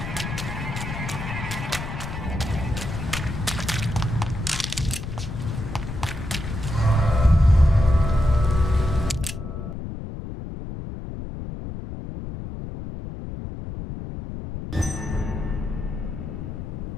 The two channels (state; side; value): noise; left; rumble, 7 dB below the sound